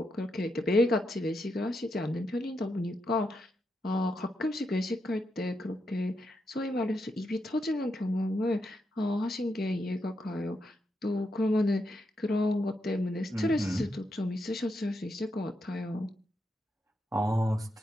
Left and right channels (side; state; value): both; normal; correlation 0.83